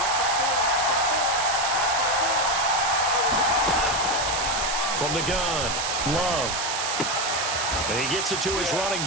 From the gun, Love. And he gets it to his running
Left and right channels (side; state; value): right; noise; hiss, 2 dB below the sound